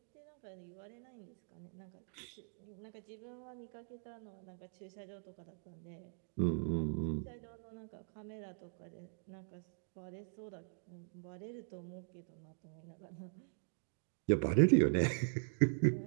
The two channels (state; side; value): silent; left; digital silence